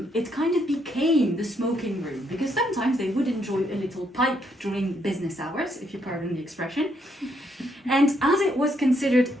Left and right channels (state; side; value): normal; both; correlation 0.74